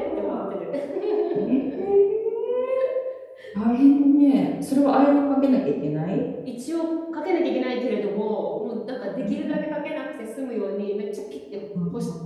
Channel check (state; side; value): identical; both; correlation 1.00